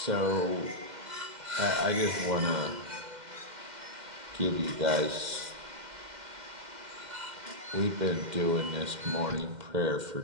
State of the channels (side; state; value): left; late; 2.1 ms